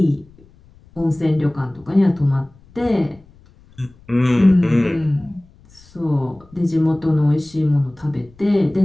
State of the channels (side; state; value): left; noise; rumble, 27 dB below the sound